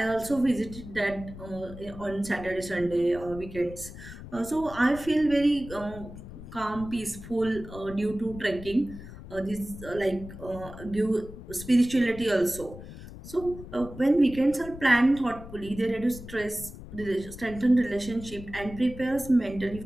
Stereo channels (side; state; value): left; noise; rumble, 14 dB below the sound